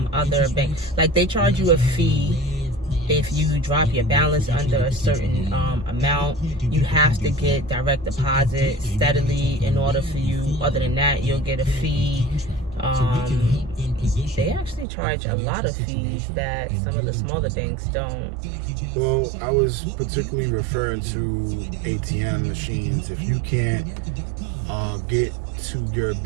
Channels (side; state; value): left; drops out; at 14.9 s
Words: other banks. Like they charge you a fee if you drop your balance under a certain amount. You have to get direct deposit steadily in order for you. Other than that, you'll get a fee. They actually charge a lot of fees that some of the smaller banks don't. Well, I was particularly referring to ATM machines. If you can't get to your